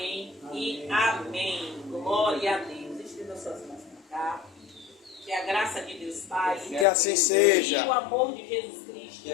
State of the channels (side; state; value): right; drops out; at 6.9 s